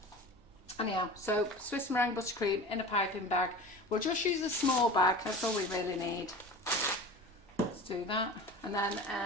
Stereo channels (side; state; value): both; normal; correlation 0.35